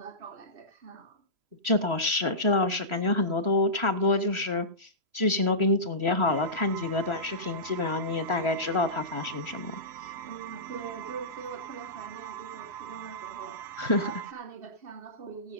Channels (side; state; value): left; late; 3.0 ms